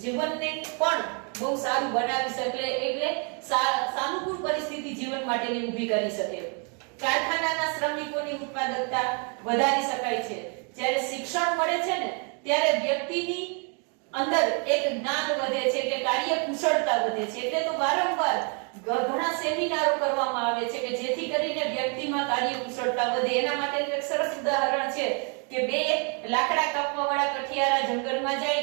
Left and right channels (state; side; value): quieter; left; 37.5 dB